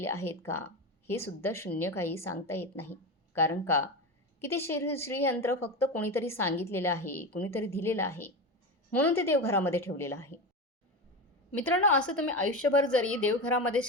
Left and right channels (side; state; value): both; normal; correlation 0.21